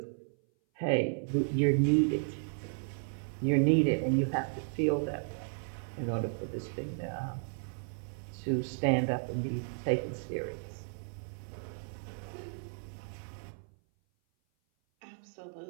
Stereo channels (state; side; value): silent; left; 55 dB below the other